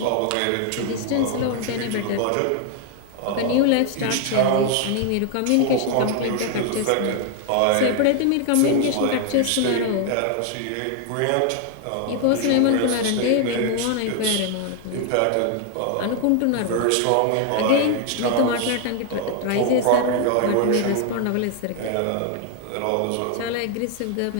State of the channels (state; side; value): different; both; correlation 0.01